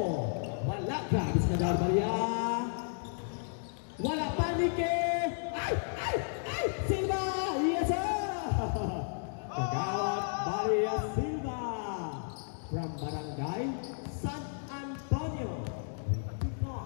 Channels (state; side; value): silent; right; digital silence